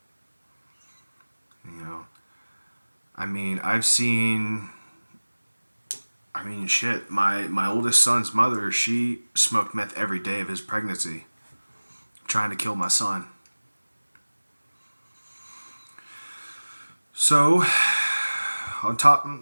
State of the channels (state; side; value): inverted; both; correlation -1.00